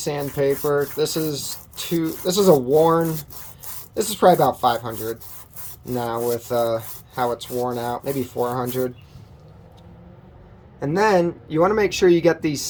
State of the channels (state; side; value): identical; both; correlation 1.00